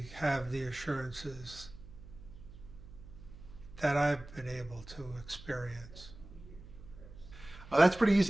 have the assurances that I've been able to experience. That's pretty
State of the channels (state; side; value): noise; right; hum, 17 dB below the sound